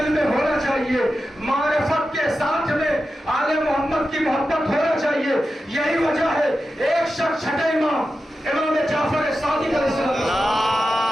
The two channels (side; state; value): both; normal; correlation 0.91